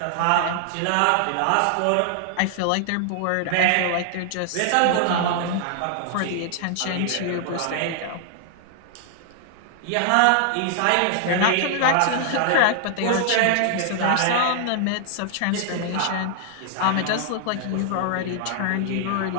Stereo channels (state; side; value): different; both; correlation 0.00